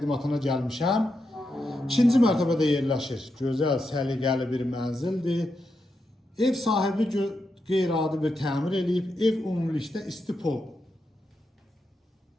gəlmişəm. İkinci mərtəbədə yerləşir. Gözəl, səliqəli bir mənzildir. Ev sahibi qeyri-adi bir təmir eləyib. Ev ümumilikdə istipol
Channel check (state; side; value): normal; both; correlation 0.85